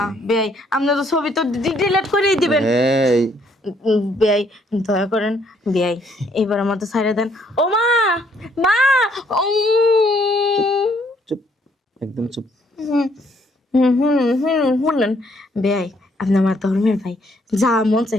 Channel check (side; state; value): both; normal; correlation 0.67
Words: নিই। বেয়াই আপনি তো ছবি তো ডিলিট করেই দিবেন এই বেয়াই দয়া করেন বেয়াই এবার আমার তো ছাইড়ে দেন ও মা মা চুপ, একদম চুপ। শুনলেন বেয়াই আপনি আমার ধর্মের ভাই যা মন